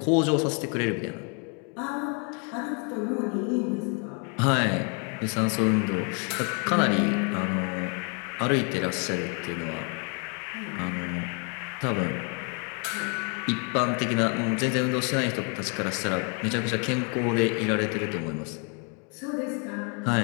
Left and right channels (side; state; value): right; quieter; 37.4 dB